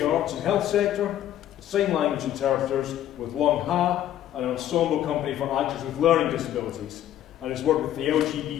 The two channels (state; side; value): quieter; right; 11.8 dB